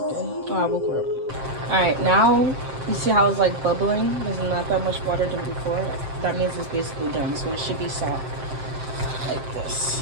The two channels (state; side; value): late; left; 7.6 ms